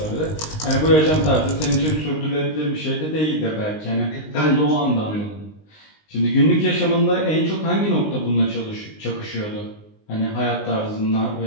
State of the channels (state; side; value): late; right; 19 ms